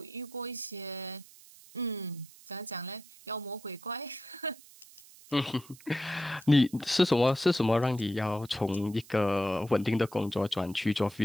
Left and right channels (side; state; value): right; noise; hiss, 22 dB below the sound